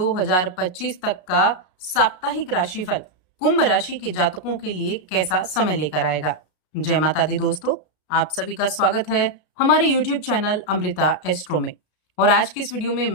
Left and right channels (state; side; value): late; right; 33 ms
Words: तक का साप्ताहिक राशिफल कुंभ राशि के जातकों के लिए कैसा समय लेकर आएगा। जय माता दी दोस्तों, आप सभी का स्वागत है हमारे YouTube चैनल अमृता एस्ट्रो में। और आज की इस वीडियो में